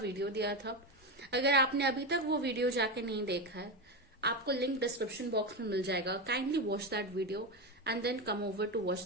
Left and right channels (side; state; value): both; normal; correlation 0.15